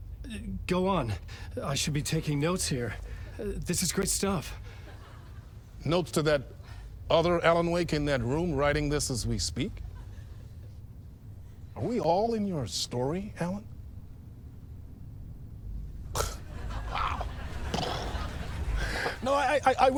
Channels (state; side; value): identical; both; correlation 1.00